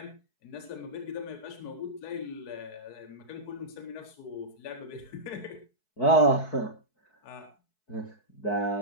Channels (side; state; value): right; late; 4.6 ms